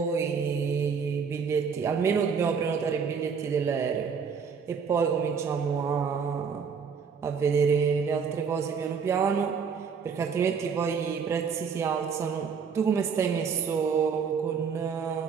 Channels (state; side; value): quieter; left; 6.2 dB